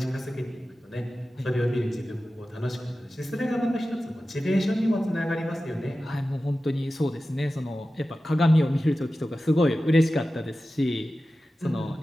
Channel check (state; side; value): normal; both; correlation 0.94